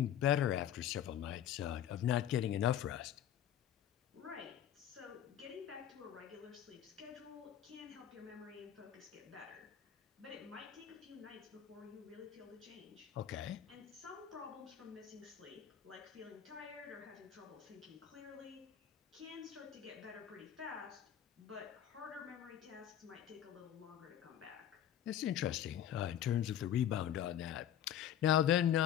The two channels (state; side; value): quieter; right; 10.4 dB